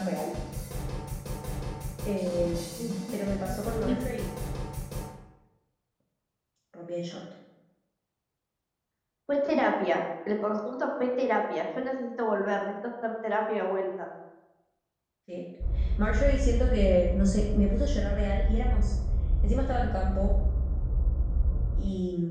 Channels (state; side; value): identical; both; correlation 1.00